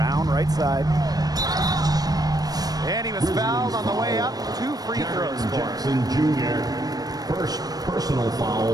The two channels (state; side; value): late; left; 0.19 ms